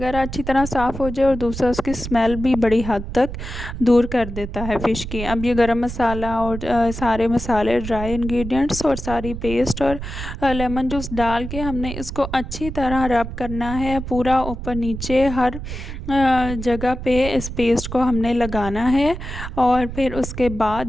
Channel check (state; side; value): noise; right; rumble, 8 dB below the sound